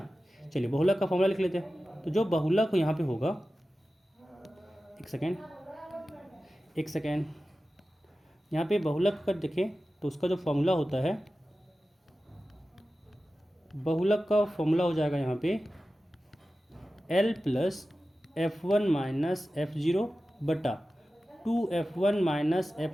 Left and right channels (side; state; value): both; normal; correlation 0.94